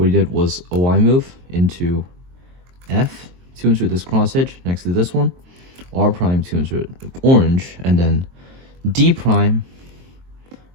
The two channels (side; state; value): left; late; 23 ms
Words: he did was a Y move into F to insert this cross edge next to this one, R prime to insert orange, and then D prime